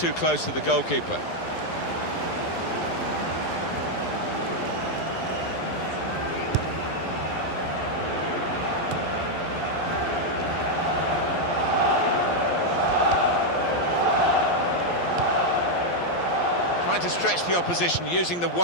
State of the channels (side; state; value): right; late; 11 ms